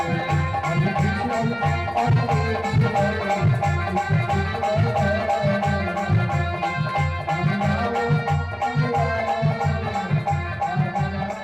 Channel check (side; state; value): right; noise; hum, 28 dB below the sound